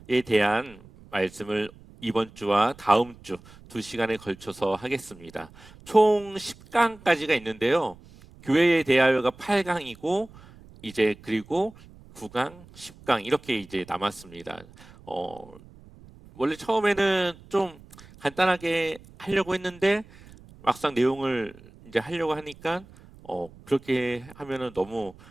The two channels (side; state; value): right; noise; rumble, 22 dB below the sound